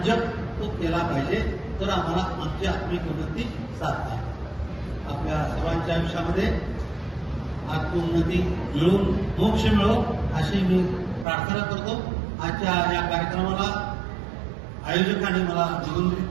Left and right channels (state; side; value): drops out; left; at 11.2 s